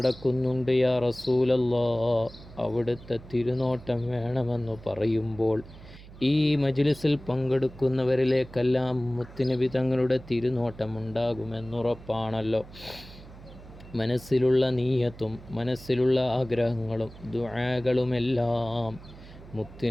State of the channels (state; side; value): noise; right; hum, 18 dB below the sound